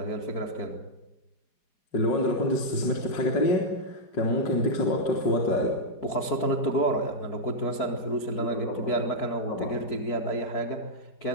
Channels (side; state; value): right; late; 4.9 ms